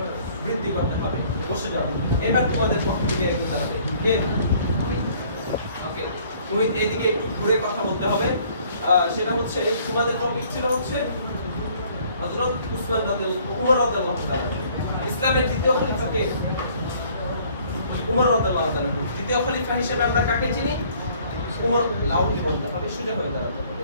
বৃদ্ধি করতে হবে। বসে যাও। এবার তোমাদের পক্ষ থেকে একটু দাঁড়াবে কে? ওকে, তুমি এইদিকে একটু ঘুরে কথা বলতে হবে। সেটা হচ্ছে তোমাদের টপিক ছিল হচ্ছে হযরত উমর রাদিয়াল্লাহু তাআলা। ইসলামের দ্বিতীয় খলিফা কে? উমর রাদিয়াল্লাহু তাআলা। দ্বিতীয় খলিফা হিসেবে আমরা কাকে চিনি? উমর। লাউডলি বলতে হবে, সোজা হয়ে দাঁড়াতে হবে।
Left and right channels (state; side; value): inverted; both; correlation -0.58